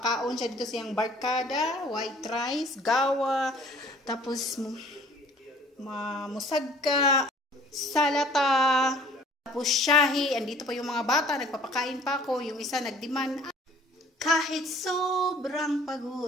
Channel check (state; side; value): normal; both; correlation 0.53